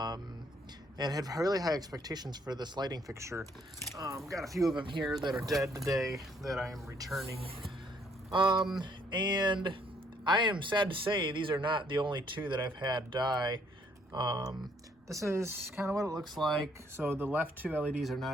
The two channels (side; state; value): both; normal; correlation 0.67